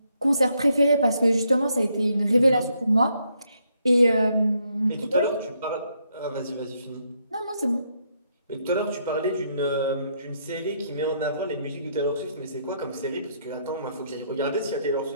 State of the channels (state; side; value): inverted; both; correlation -0.75